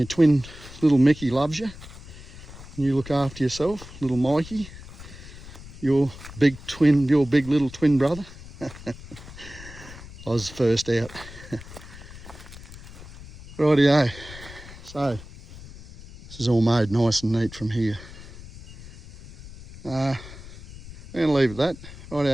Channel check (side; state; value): left; noise; rumble, 16 dB below the sound